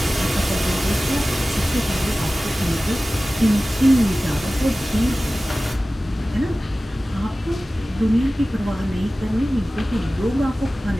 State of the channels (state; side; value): normal; both; correlation 0.96